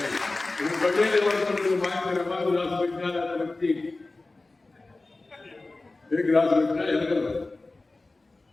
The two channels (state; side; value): quieter; right; 3.2 dB